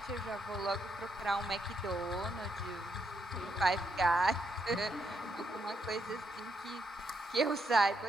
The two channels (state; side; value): normal; both; correlation 0.78